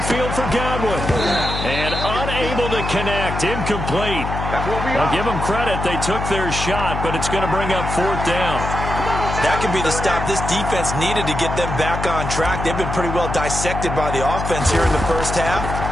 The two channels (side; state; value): left; noise; hum, 4 dB below the sound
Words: for Godwin. And unable to connect, incomplete. I'll give them credit. They took their shot, but it's going to bring up fourth down. That could be the stop this defense needed to get them back on track. They've been pretty well dissected by the offense here in the first half.